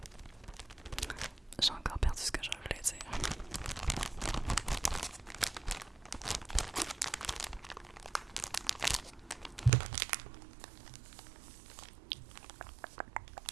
j'ai encore perdu ce que je voulais dire.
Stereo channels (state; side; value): drops out; left; at 9.7 s